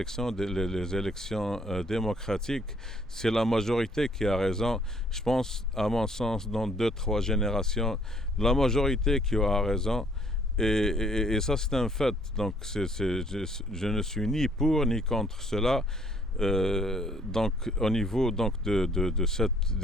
les élections démocratiques, c'est la majorité qui a raison. Je pense, à mon sens, dans 2-3 générations, la majorité qui aura raison. Et ça, c'est un fait. Donc, je ne suis ni pour ni contre cela. Donc, au niveau donc, de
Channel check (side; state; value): both; normal; correlation 0.63